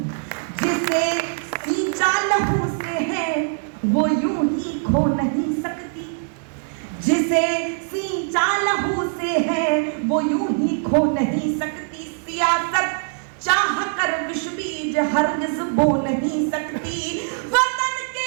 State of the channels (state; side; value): silent; left; digital silence